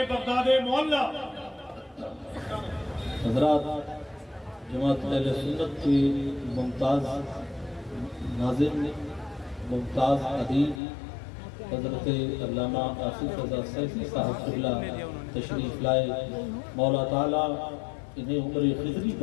بغداد معلیٰ حضرات، جماعت اہل سنت کی ممتاز ناظم، ممتاز ادیب حضرت علامہ آصف رضا سیفی صاحب قبلہ تشریف لائے، مولا تعالیٰ انہیں عمر خضری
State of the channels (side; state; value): right; drops out; at 10.8 s